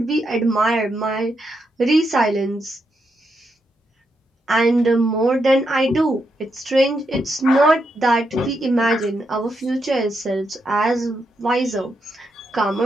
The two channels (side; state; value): both; normal; correlation 0.82